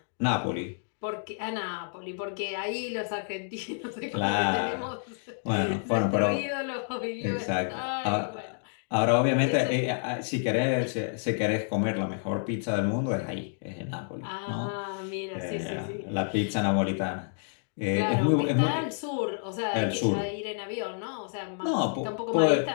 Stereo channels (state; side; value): silent; right; digital silence